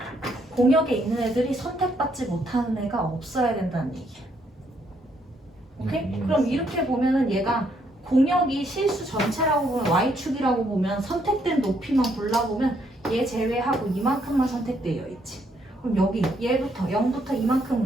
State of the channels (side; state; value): both; normal; correlation 0.72